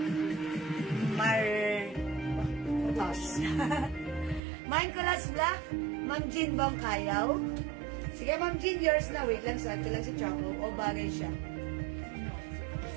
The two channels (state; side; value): drops out; left; at 4.4 s